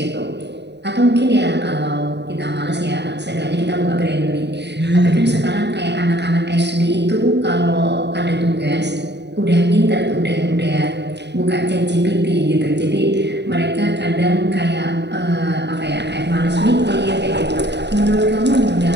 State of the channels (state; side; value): late; left; 0.50 ms